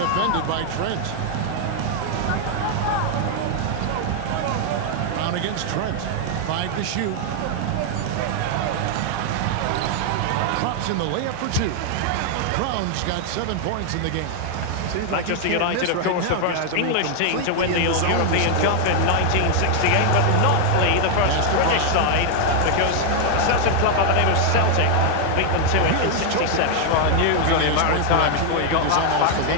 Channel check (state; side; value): different; both; correlation 0.00